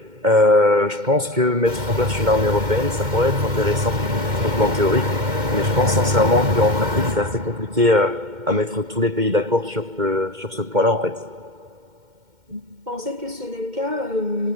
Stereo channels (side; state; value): left; late; 2.1 ms